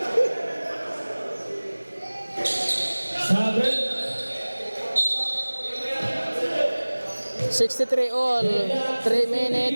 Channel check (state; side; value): inverted; both; correlation -1.00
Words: Seven. 63 all. 3